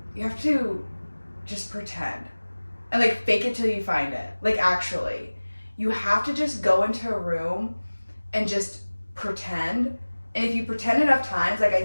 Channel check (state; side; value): inverted; both; correlation -1.00